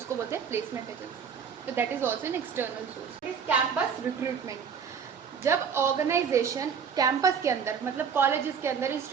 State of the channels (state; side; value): quieter; left; 6.8 dB